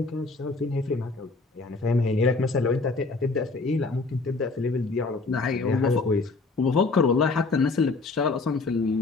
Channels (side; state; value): right; quieter; 3.7 dB